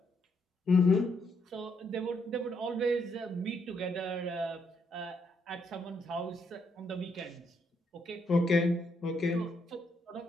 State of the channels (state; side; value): normal; both; correlation 0.75